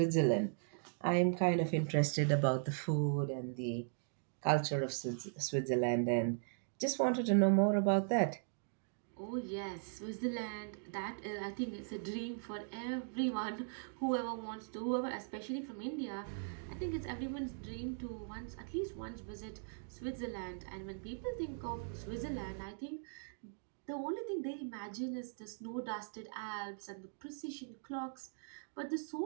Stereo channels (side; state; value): left; silent; digital silence